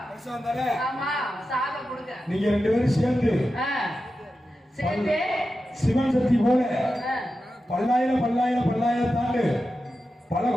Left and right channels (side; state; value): both; normal; correlation 0.91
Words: பெருசா இருந்தாலே ஆமா, சாதம் கொடுங்க. நீங்க 2 பேரும் சேர்ந்து ஆ. சேர்ந்து சிவன் சக்தி போல ஆ. பல்லாயிரம் பல்லாயிரம் பல்லாயிரம் தாண்டு பல